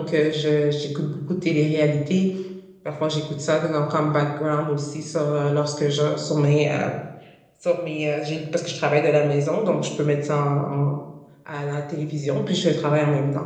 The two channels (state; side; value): identical; both; correlation 1.00